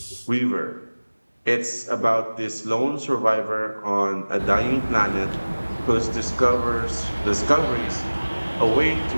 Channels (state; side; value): inverted; both; correlation -1.00